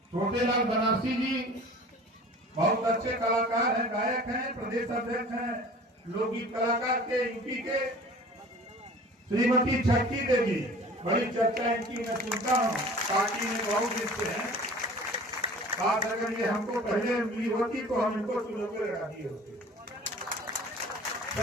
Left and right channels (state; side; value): normal; both; correlation 0.44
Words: बनारसी जी बहुत अच्छे कलाकार हैं, गायक हैं, प्रदेश अध्यक्ष हैं, लोकगीत कलाकार के यूपी के। श्रीमती छक्की देवी, बड़ी चर्चा इनकी मैं सुनता हूँ, पार्टी में बहुत दिन से हैं। बात अगर ये हमको पहले मिली होती तो हम इनको चुनौती लगा दिए होते।